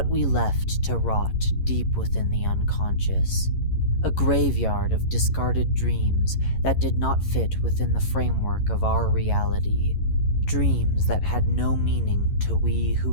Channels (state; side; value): late; right; 11 ms